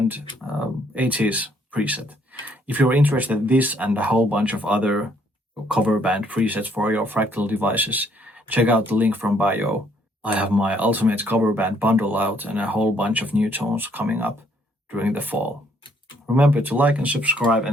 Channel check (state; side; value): normal; both; correlation 0.67